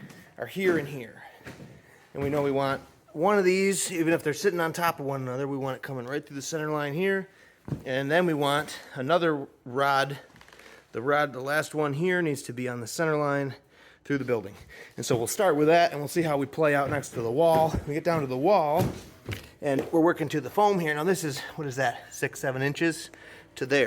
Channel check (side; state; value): both; identical; correlation 1.00